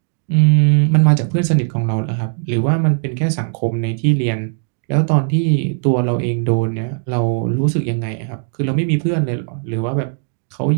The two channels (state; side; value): silent; left; 68 dB below the other